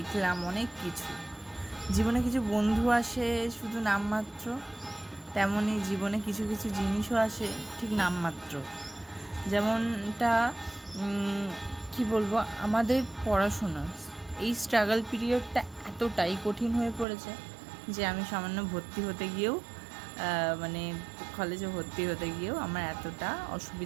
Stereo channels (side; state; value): left; drops out; at 17.1 s